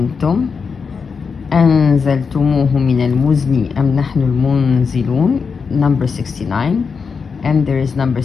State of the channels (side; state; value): right; quieter; 5.5 dB